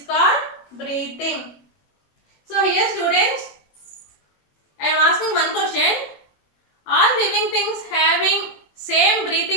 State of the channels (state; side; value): late; right; 21 ms